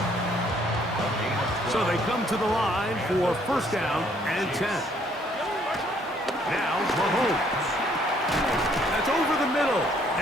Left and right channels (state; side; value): normal; both; correlation 0.65